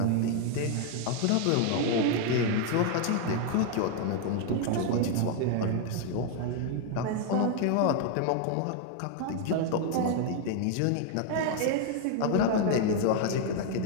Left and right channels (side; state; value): both; different; correlation 0.00